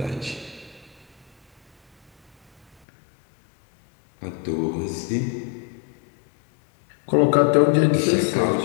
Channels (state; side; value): drops out; right; at 2.8 s